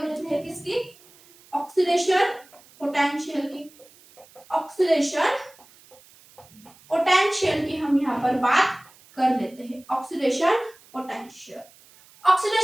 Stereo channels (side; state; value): right; noise; hiss, 26 dB below the sound